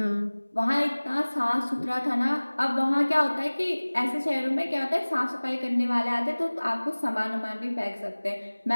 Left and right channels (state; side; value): inverted; both; correlation -1.00